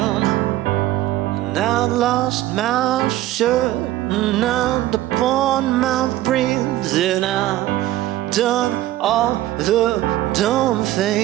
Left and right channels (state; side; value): quieter; left; 15.0 dB